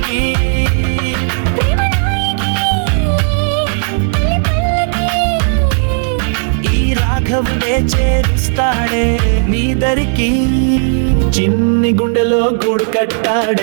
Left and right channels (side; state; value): left; silent; 61 dB below the other